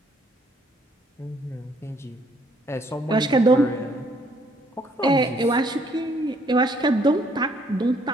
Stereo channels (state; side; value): normal; both; correlation 0.66